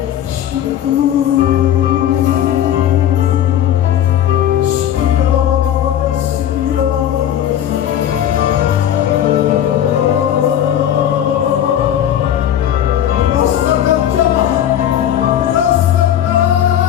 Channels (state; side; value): quieter; right; 10.6 dB